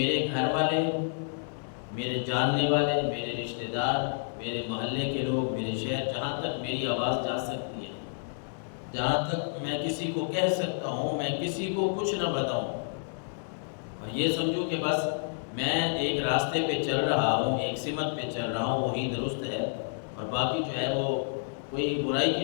گھر والے، میرے جاننے والے، میرے رشتہ دار، میرے محلے کے لوگ، میرے شہر، جہاں تک میری آواز جا سکتی ہے، جہاں تک میں کسی کو کہہ سکتا ہوں، میں کسی کو کچھ نہ بتاؤں، اور یہ سمجھو کہ بس میں ایک راستے پہ چل رہا ہوں، ایک سمت پہ چل رہا ہوں، وہی درست ہے، اور باقی جو ہے وہ کوئی برائی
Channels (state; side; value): silent; right; digital silence